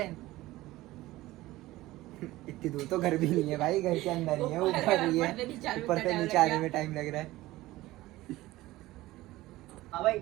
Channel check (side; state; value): left; quieter; 17.6 dB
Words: इतनी दूर तो घर भी नहीं है भाई, घर के अंदर ही है, ऊपर ही है, ऊपर से नीचे आने में टाइम लग रहा है। हाँ भाई,